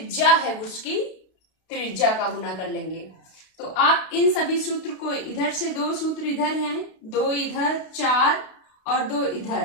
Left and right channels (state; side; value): late; right; 32 ms